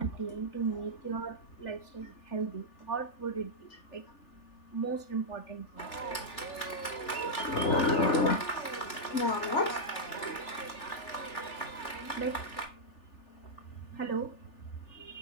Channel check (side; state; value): right; late; 3.4 ms